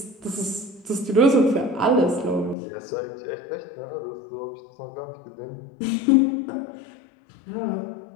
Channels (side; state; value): right; drops out; at 2.6 s